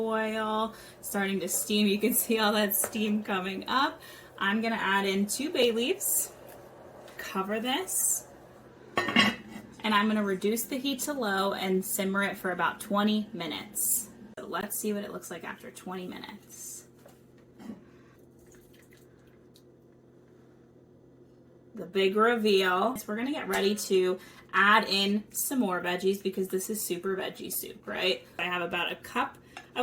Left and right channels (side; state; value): both; identical; correlation 1.00